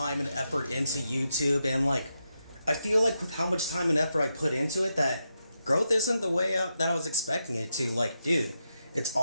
and effort into YouTube, and like I feel like with how much time and effort I put into it, that growth isn't the way that I was expecting it to. Like, dude, it's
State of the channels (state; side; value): inverted; both; correlation -0.85